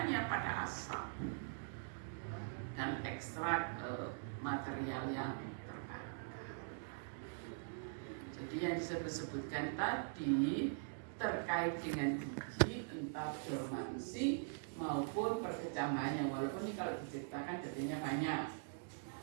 pada asam dan ekstrak material yang terbakar. Jadi yang disebutkan tadi terkait dengan biji, entah dormansi maupun perkecambahannya, walaupun ini kalau diceritakan detailnya banyak.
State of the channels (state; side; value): silent; left; digital silence